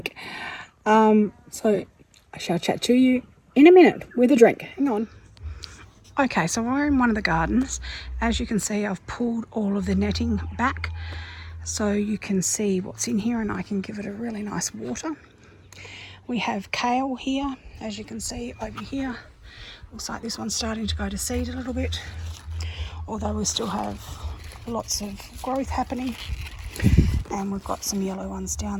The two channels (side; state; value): both; identical; correlation 1.00